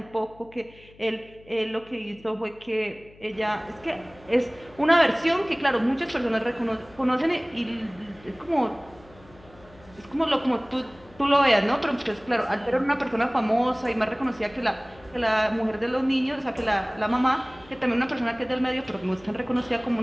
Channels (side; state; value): left; noise; hum, 25 dB below the sound